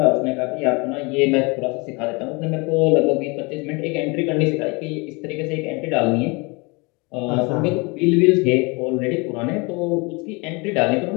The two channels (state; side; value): quieter; right; 28.2 dB